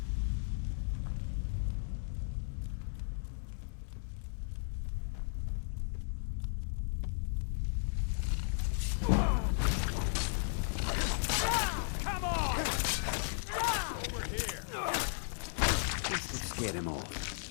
Get him off.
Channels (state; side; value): silent; right; digital silence